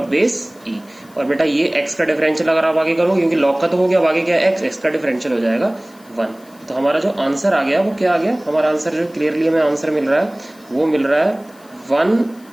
बेस e। और बेटा ये x का डिफरेंशियल अगर आप आगे करोगे, क्योंकि log का तो हो गया, अब आगे क्या है x का डिफरेंशियल हो जाएगा 1। तो हमारा जो आंसर आ गया वो क्या आ गया, हमारा आंसर जो क्लियरली हमें आंसर मिल रहा है वो मिल रहा है 1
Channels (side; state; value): left; noise; hiss, 28 dB below the sound